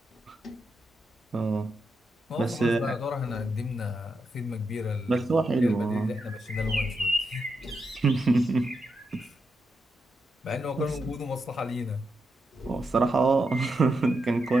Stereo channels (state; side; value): normal; both; correlation 0.85